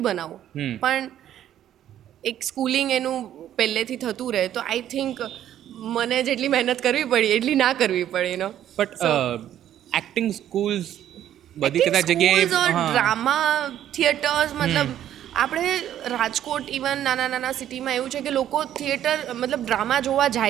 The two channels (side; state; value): left; quieter; 11.3 dB